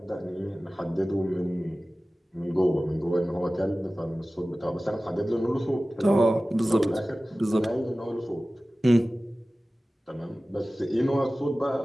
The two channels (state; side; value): normal; both; correlation 0.97